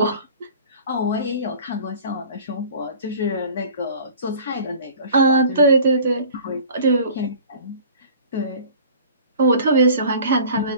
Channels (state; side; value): inverted; both; correlation -0.45